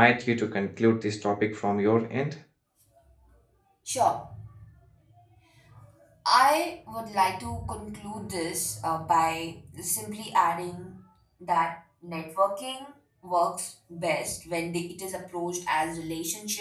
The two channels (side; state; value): both; identical; correlation 1.00